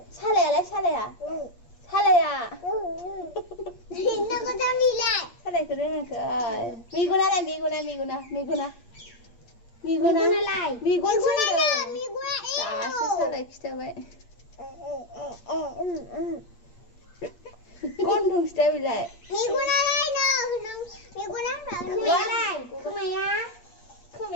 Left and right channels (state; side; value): late; right; 8.5 ms